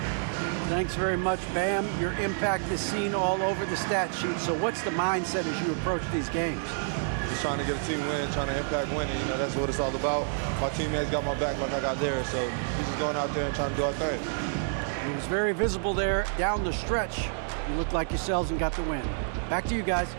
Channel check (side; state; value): left; silent; digital silence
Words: Thanks very much, Bam. Your impact is seen all over the stat sheet. So what's the mindset as you approach these games? Just trying to get a team win, trying to impact winning. You know, that's what it's all about. My teammates got my back like I got theirs. So we're just going out there and trying to do our thing. It was very visible there down the stretch. You looked like yourselves and got the win. Back to you guys.